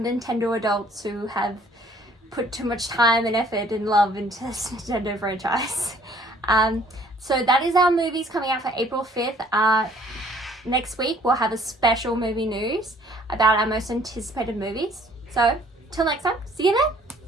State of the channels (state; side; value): normal; both; correlation 0.58